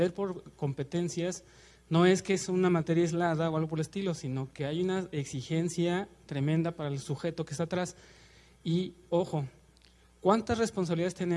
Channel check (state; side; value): identical; both; correlation 1.00